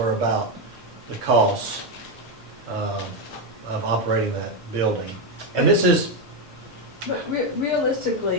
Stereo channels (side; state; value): both; normal; correlation 0.07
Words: about the costs of operating that building. And this is, But